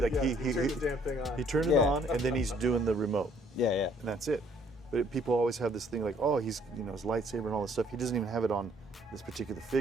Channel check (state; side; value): normal; both; correlation 0.63